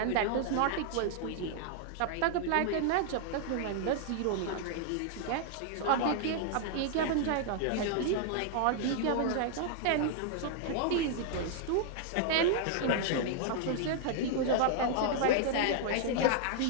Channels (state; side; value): different; both; correlation 0.00